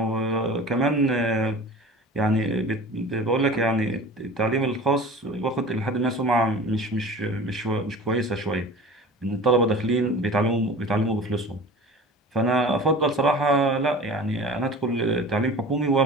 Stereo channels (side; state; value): both; normal; correlation 0.39